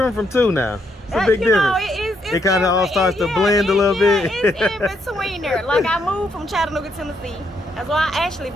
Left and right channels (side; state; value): both; normal; correlation 0.75